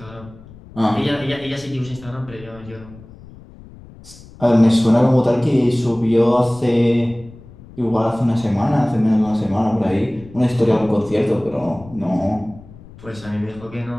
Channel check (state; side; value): noise; left; rumble, 20 dB below the sound